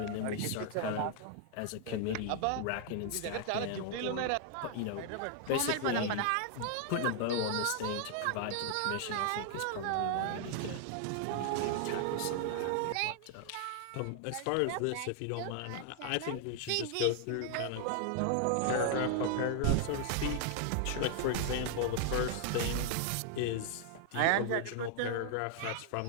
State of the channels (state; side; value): different; both; correlation 0.00